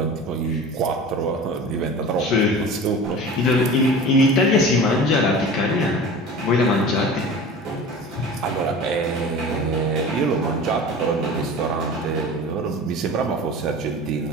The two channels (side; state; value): both; normal; correlation 0.37